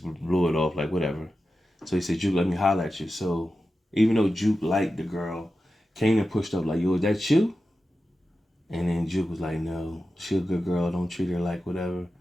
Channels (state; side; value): normal; both; correlation 0.92